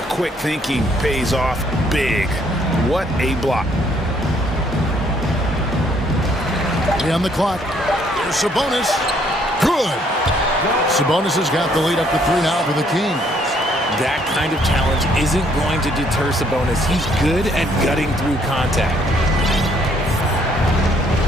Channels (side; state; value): both; normal; correlation 0.66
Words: quick thinking pays off big. What a block. On the clock. Here's Sabonis. Good. Sabonis has got the lead up to 3 now for the Kings. That kind of challenge isn't going to deter Sabonis. He's good at gutting through contact.